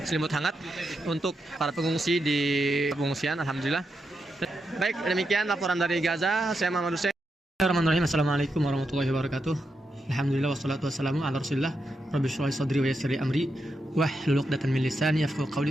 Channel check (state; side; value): normal; both; correlation 0.85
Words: hangat untuk para pengungsi di pengungsian. Alhamdulillah. Baik, demikian laporan dari Gaza. Saya Muhammad Hussein. Bismillahirrahmanirrahim. Assalamualaikum warahmatullahi wabarakatuh. Alhamdulillah wassalatu wassalamu ala Rasulillah. Rabbi shrah li sadri wa yassir li amri wahlul 'uqdatam min lisani yafqahu